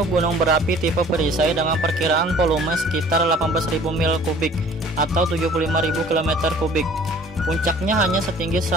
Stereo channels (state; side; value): normal; both; correlation 0.50